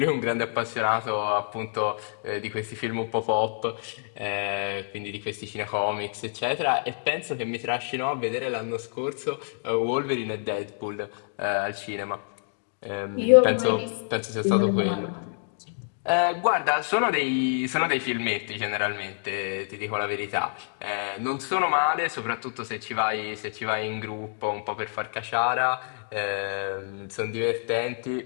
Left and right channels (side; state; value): right; silent; digital silence